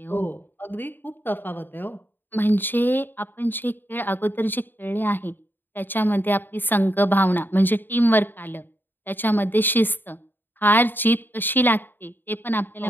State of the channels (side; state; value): right; late; 0.094 ms